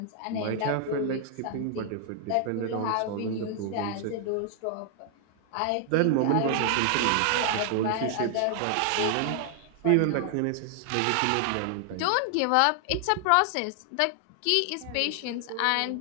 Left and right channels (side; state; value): both; different; correlation 0.00